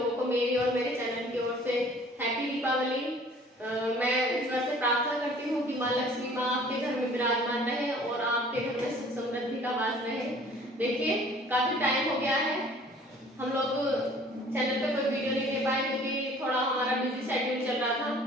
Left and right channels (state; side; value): normal; both; correlation 0.52